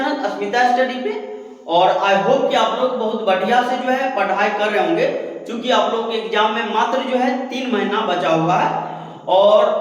अस्मिता स्टडी पे। और आई होप कि आप लोग बहुत बढ़िया से जो है पढ़ाई कर रहे होंगे, क्योंकि आप लोग के एग्जाम में मात्र जो है 3 महीना बचा हुआ है और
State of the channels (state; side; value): identical; both; correlation 1.00